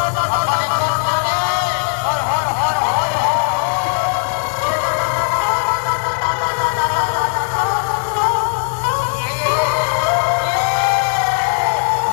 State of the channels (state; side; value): silent; right; digital silence